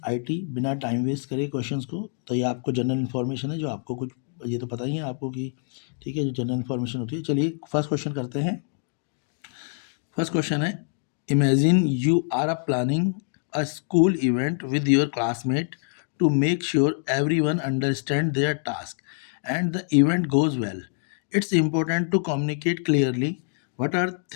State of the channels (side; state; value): right; silent; digital silence